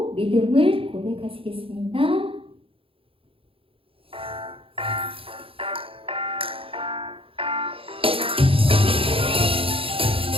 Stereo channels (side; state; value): left; late; 0.27 ms